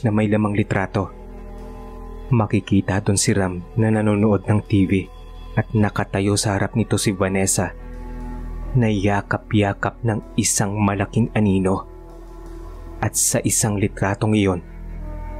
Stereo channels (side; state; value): both; identical; correlation 1.00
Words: Makikita doon si Ram na nanonood ng TV at nakatayo sa harap nito si Vanessa na yakap-yakap ng isang malaking anino. At sa isang litratong iyon,